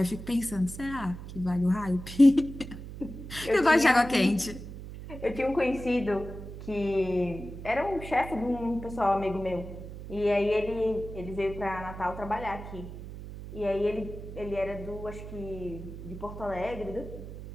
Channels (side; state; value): right; noise; hum, 11 dB below the sound